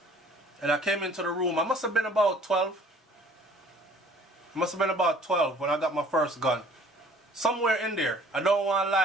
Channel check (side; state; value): both; normal; correlation 0.54